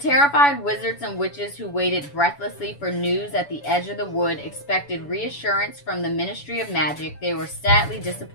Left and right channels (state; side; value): late; right; 7.0 ms